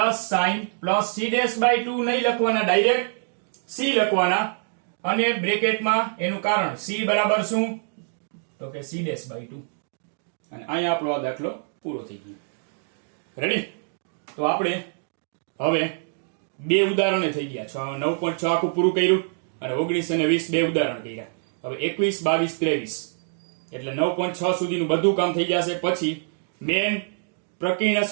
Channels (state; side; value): silent; left; digital silence